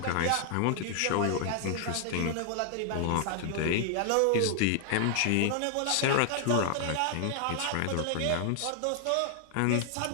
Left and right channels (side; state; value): both; different; correlation 0.00